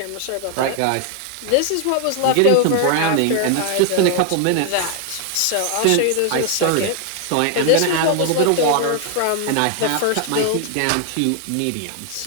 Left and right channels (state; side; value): different; both; correlation 0.00